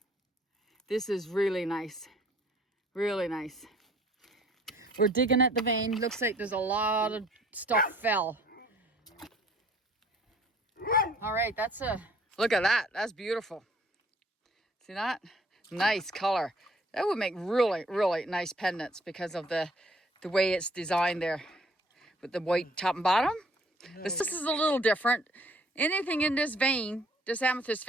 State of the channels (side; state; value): both; normal; correlation 0.58